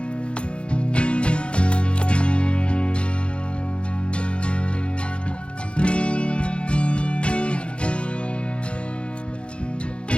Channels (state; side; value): late; right; 0.057 ms